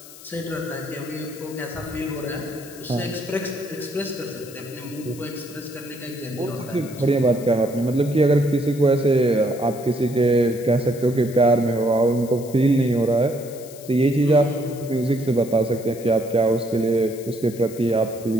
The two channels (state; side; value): noise; left; hiss, 18 dB below the sound